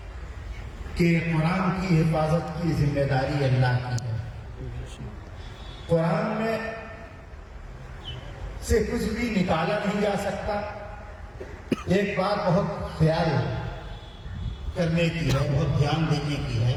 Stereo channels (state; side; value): identical; both; correlation 1.00